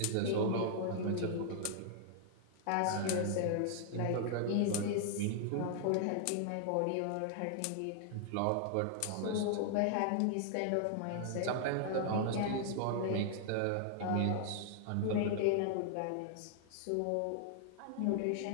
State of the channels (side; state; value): both; different; correlation -0.01